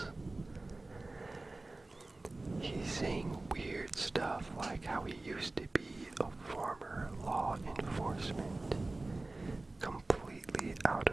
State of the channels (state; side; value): quieter; left; 3.0 dB